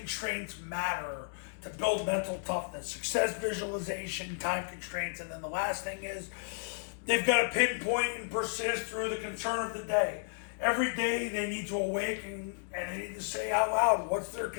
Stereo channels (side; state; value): right; silent; digital silence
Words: matter to build mental toughness. Success visualization, time constraints, and then the last thing is they've got to pinpoint and persist through the concern of the day. Every day they need to awaken and they need to say out loud, what's their